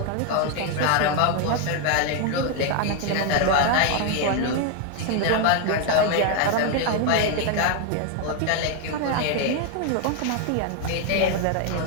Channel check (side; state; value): both; different; correlation 0.01